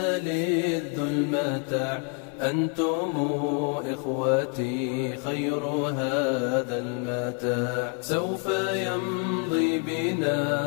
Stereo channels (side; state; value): right; quieter; 36.7 dB